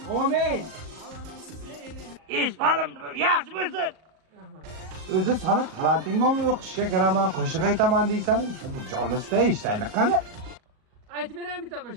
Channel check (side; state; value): left; late; 38 ms